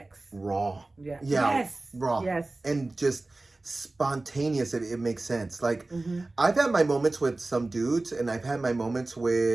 Raw. Yeah. Yes. Raw. Yes. And just spontaneous. It makes sense. Like, I've had my moments with some dudes, and I've had my moments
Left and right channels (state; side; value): quieter; left; 3.0 dB